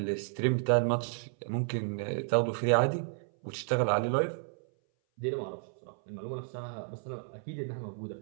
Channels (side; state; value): left; silent; 56 dB below the other